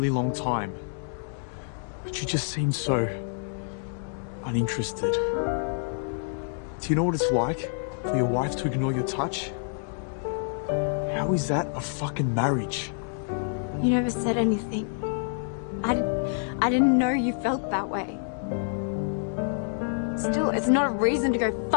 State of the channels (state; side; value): silent; right; digital silence